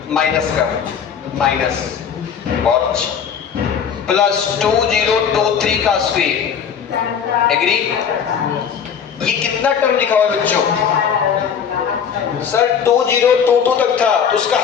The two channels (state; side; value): quieter; right; 7.4 dB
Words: माइनस का माइनस और प्लस 2023 का स्क्वायर, एग्री। ये कितना टर्म लिखा हुआ है बच्चों, सर 2022 तक था तो उसका